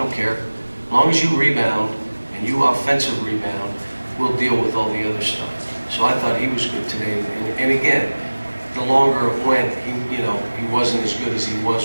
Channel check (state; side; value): inverted; both; correlation -1.00